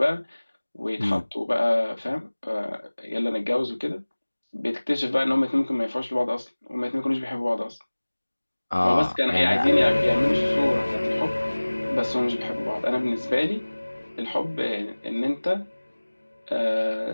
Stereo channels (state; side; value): inverted; both; correlation -1.00